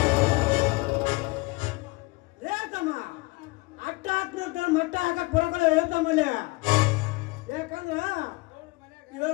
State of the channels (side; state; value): right; quieter; 24.5 dB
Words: ಹೇಳ್ತಮ್ಮ ಅಟ್ಟ ಹಾಕ್ನಂತ ಮಟ್ಟ ಹಾಕಕ್ ಬರೋಕಲ್ಲ ಹೇಳ್ತಮ್ಮಲ್ಲಿ. ಯಾಕಂದ್ರ